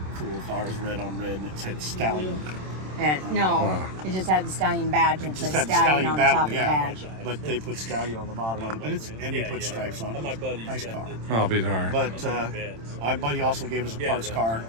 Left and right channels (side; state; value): left; late; 27 ms